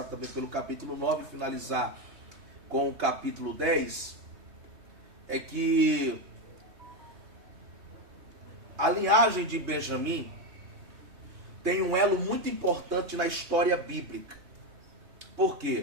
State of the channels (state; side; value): late; left; 3.3 ms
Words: também pelo capítulo 9 e finalizar com o capítulo 10, é que a linhagem de Benjamim tem um elo muito importante na história bíblica. Por